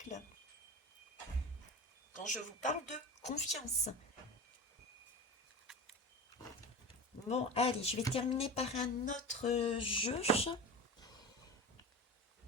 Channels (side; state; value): both; normal; correlation 0.30